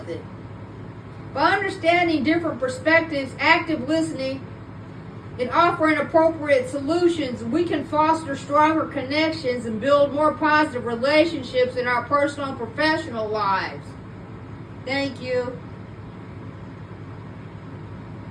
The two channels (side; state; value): both; identical; correlation 1.00